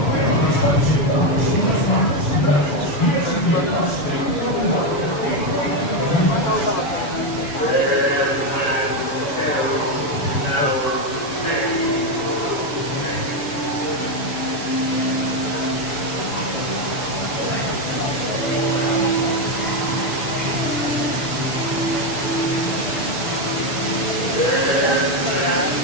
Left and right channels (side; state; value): right; late; 7.0 ms